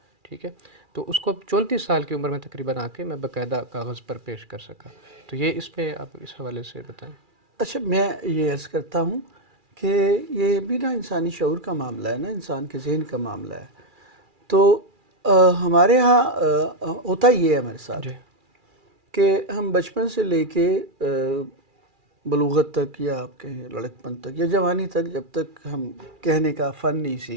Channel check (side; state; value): left; late; 2.4 ms